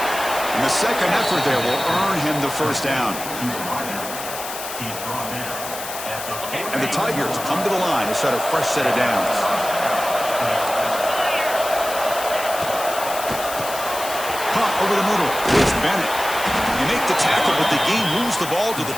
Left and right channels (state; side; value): noise; left; hiss, 9 dB below the sound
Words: And the second effort there will earn him the first down. And the Tigers come to the line to set a fresh set of downs. Pop over the middle. It's Bennett. You make the tackle, but the game moves the ball to